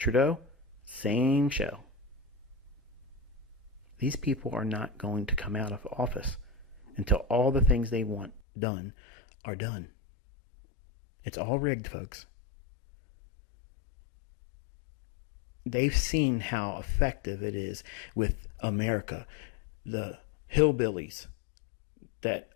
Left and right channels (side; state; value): right; drops out; at 8.4 s